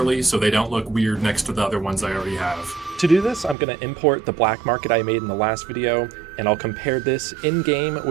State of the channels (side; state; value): left; drops out; at 3.6 s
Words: so they don't look weird next to the other ones I already have. To do this, I'm going to import the black market I made in the last video, and I'll compare this in-game